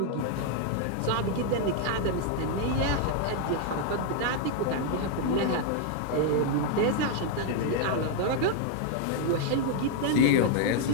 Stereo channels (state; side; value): different; both; correlation 0.00